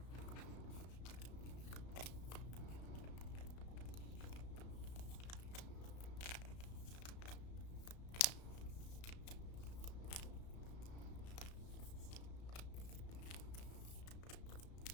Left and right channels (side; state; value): right; late; 34 ms